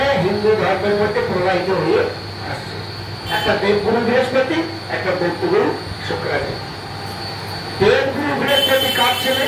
হিন্দু ধর্মের মধ্যে প্রবাহিত হয়ে আসছে। একটা দেবগুরু বৃহস্পতি, একটা দৈত্যগুরু শুক্রাচার্য। দেবগুরু বৃহস্পতি কার ছেলে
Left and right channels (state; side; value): identical; both; correlation 1.00